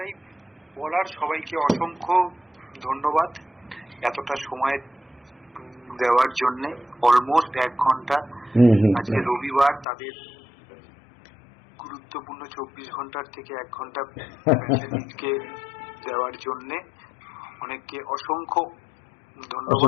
বলার। সবাইকে অসংখ্য ধন্যবাদ এতটা সময় দেওয়ার জন্য। অলমোস্ট 1 ঘন্টা, আজকে রবিবার, তাদের গুরুত্বপূর্ণ 24 ঘন্টার থেকে 1 ঘন্টা প্যাশেন্টকে দেওয়ার জন্য অনেককে অসংখ্য ধন্যবাদ।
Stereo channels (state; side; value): drops out; right; at 9.9 s